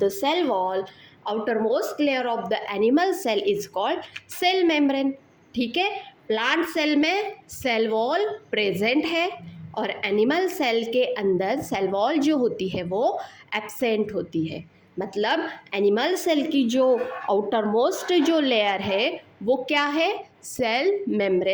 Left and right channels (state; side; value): identical; both; correlation 1.00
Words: cell wall, outermost layer of the animal cell is called cell membrane। ठीक है, plant cell में सेल वॉल प्रेजेंट है और एनिमल सेल के अंदर सेल वॉल जो होती है वो एब्सेंट होती है। मतलब एनिमल सेल की जो आउटर मोस्ट जो लेयर है वो क्या है, सेल